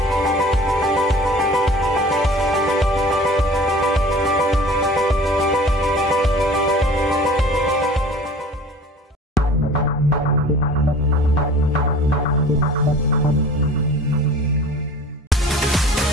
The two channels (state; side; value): normal; both; correlation 0.45